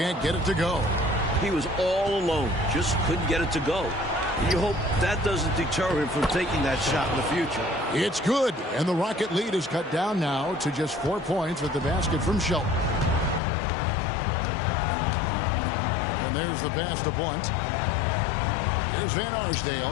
get it to go. He was all alone. Just couldn't get it to go. You hope that doesn't deter him from taking that shot in the future. It's good, and the Rocket lead is cut down now to just 4 points with the basket from Shelton. And there's the pass to Blunt. Here's Van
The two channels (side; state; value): right; drops out; at 13.4 s